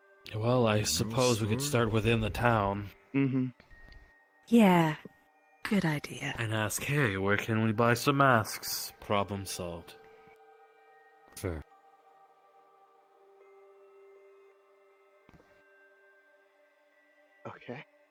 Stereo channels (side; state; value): both; identical; correlation 1.00